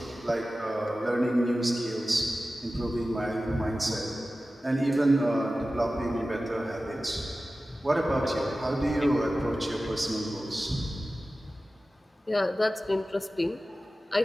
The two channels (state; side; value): normal; both; correlation 0.95